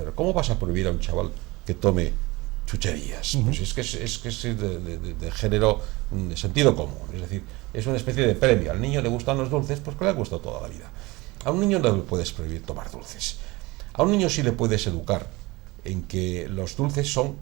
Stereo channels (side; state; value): left; quieter; 22.4 dB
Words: ¿cómo vas a prohibir a un chaval que tome chucherías? Pues es que es de género, de sentido común. Es decir, es una especie de premio. Al niño le gustan los dulces, pues que le ha gustado toda la vida. A un niño no le puedes prohibir tomar dulces. A un niño sí le puedes educar en que los dulces son